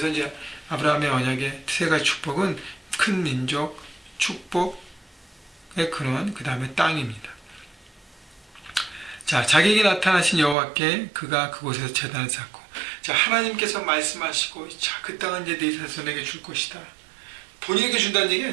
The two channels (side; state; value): left; drops out; at 10.6 s